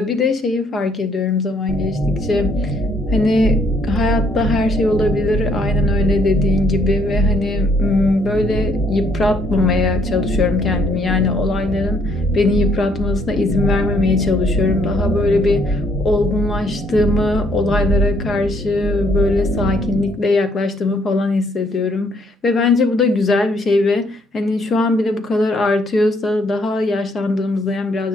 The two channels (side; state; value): both; normal; correlation 0.67